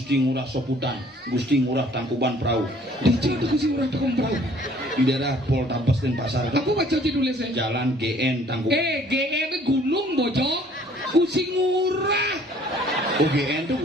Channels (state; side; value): normal; both; correlation 0.57